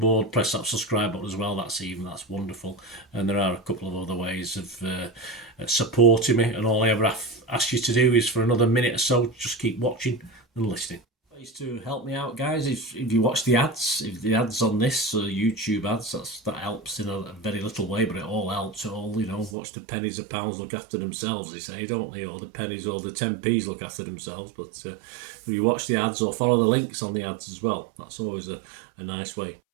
Press that subscribe button as well. That's wonderful. And there are a couple of other ways of supporting me, and all I ever ask you to do is for another minute or so, just keep watching and listening. Ways to help me out, guys, if you watch the ads, if the ads on this YouTube ads, that helps in a very little way, but it all helps. Watch the pennies and pounds look after themselves, they say, don't they? Or the pennies or the 10p's look after themselves. But if you watch the ads or follow the links on the ads as well, that's always a nice way.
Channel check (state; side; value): drops out; left; at 19.6 s